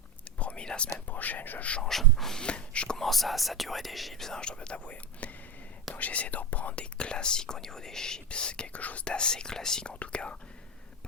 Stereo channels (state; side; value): normal; both; correlation 0.17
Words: promis la semaine prochaine je change. Je commence à saturer des chips, je dois t'avouer. Donc j'essaie de reprendre des classiques au niveau des chips, quelque chose d'assez classique en tout cas.